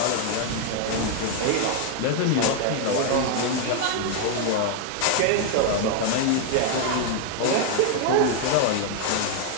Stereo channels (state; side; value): different; both; correlation 0.00